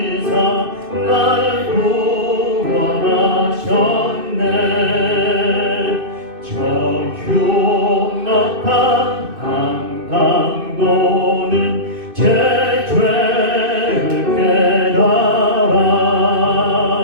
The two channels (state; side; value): late; left; 2.6 ms